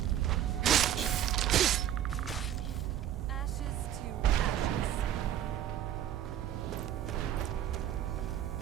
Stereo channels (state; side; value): quieter; left; 11.1 dB